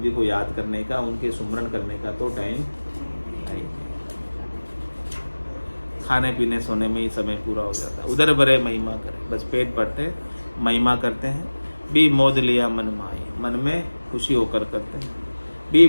जी को याद करने का, उनके सुमरन करने का तो टाइम नहीं। खाने पीने सोने में ही समय पूरा हो जाता है। उधर भरे महिमा करे, बस पेट भरते महिमा करते हैं। भी मोद लिया मन माई, मन में खुशी होकर करते हैं। भी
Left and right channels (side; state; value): both; inverted; correlation -1.00